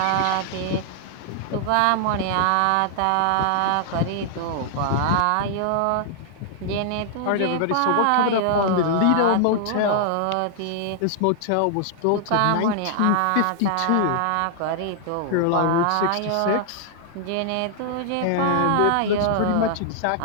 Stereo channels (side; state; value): both; different; correlation -0.01